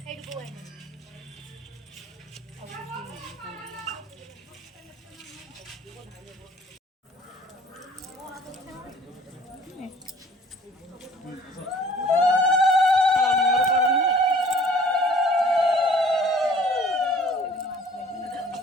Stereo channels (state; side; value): normal; both; correlation 0.52